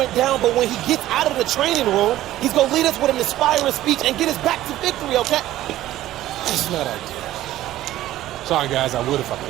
down, but when he gets out of the training room, he's going to lead us with an inspiring speech and get us back to victory, okay? That's not ideal. Sorry, guys, I would if I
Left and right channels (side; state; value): left; quieter; 14.4 dB